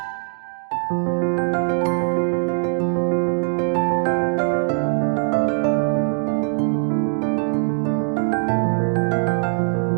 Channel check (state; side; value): silent; left; digital silence